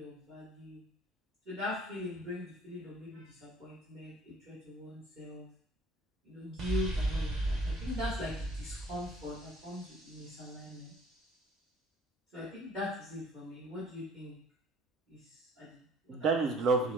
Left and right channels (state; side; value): normal; both; correlation 0.55